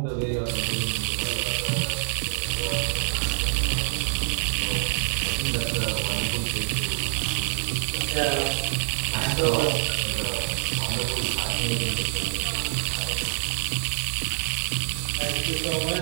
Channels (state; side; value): silent; left; digital silence